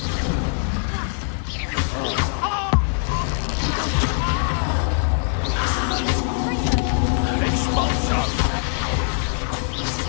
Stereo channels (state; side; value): silent; right; 62 dB below the other